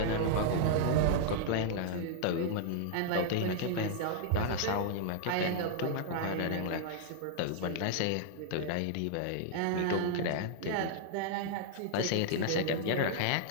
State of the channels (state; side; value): different; both; correlation -0.01